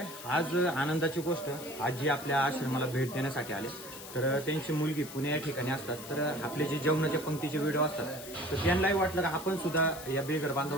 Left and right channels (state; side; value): noise; left; hiss, 13 dB below the sound